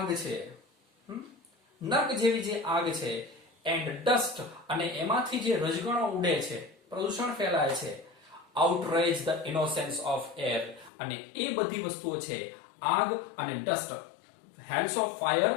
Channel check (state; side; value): drops out; right; at 10.9 s